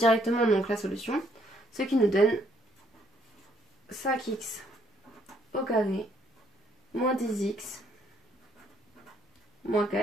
donc la solution. Ce qui nous donne 5x au carré moins 10x moins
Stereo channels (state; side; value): normal; both; correlation 0.68